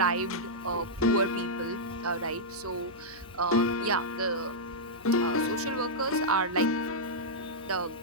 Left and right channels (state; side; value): noise; left; hum, 24 dB below the sound